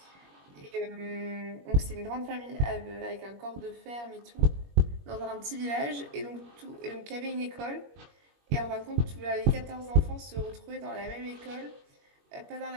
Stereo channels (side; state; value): left; late; 21 ms